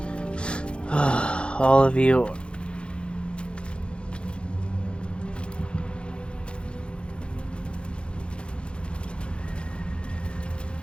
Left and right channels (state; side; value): late; right; 0.056 ms